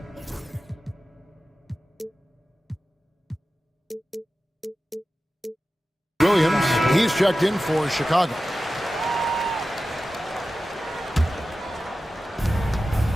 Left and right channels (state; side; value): normal; both; correlation 0.94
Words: Williams, he's checked in for Chicago.